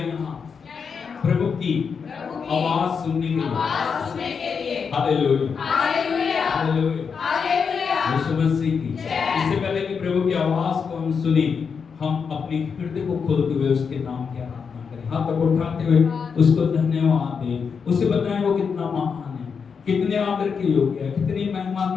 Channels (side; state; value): right; quieter; 6.0 dB